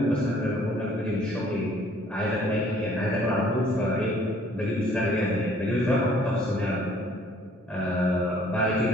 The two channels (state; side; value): normal; both; correlation 0.59